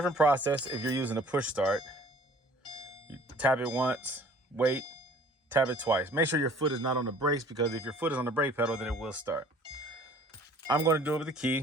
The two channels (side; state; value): both; normal; correlation 0.52